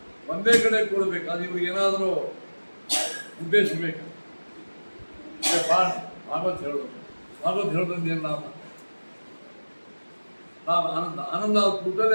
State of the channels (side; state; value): both; inverted; correlation -1.00